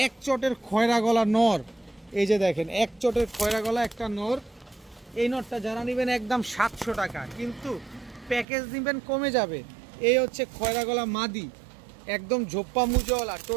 এক চটের খয়রা গলা নর, এই যে দেখেন এক চটের খয়রা গলা একটা নর। এই নরটা যারা নিবেন একদম 700 টাকা, কিন্তু প্যাকেজ নিবেন কমে যাবে। এই হচ্ছে খয়রা গলা মাদি, একদম ঝোপ্পা মুজওয়ালা।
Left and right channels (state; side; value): drops out; left; at 8.5 s